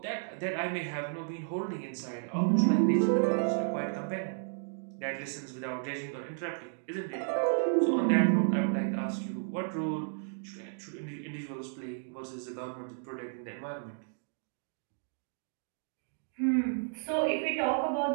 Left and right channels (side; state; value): left; silent; digital silence